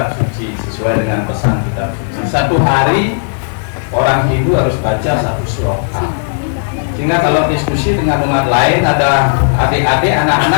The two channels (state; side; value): silent; right; digital silence